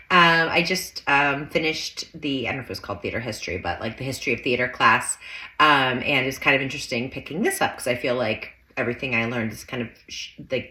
I just finished I don't know if it was called theater history, but like the history of theater class. And it's kind of interesting picking this up because I feel like everything I learned is kind of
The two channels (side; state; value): both; identical; correlation 1.00